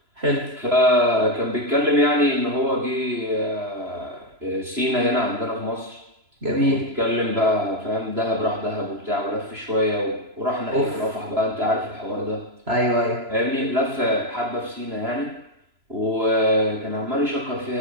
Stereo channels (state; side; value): late; left; 3.0 ms